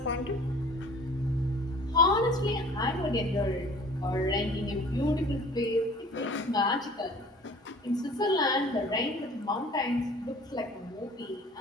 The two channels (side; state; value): both; normal; correlation 0.48